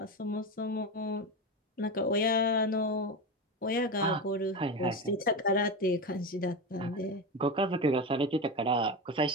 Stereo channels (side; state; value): both; normal; correlation 0.19